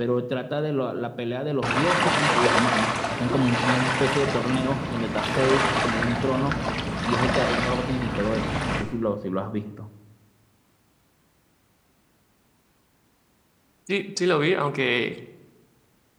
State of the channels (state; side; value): identical; both; correlation 1.00